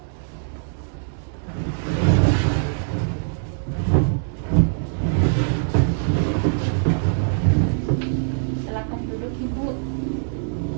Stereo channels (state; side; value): silent; left; digital silence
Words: Silakan duduk ibu.